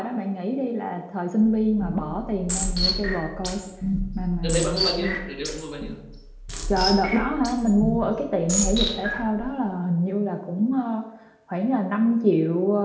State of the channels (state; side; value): identical; both; correlation 1.00